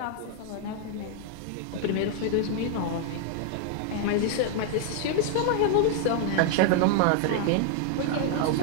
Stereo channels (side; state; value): both; different; correlation 0.00